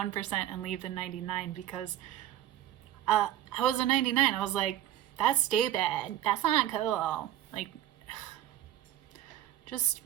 and leave the 99 because I was a 99. I was like, that's stupid. That's not cool. Like, just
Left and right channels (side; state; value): left; quieter; 12.5 dB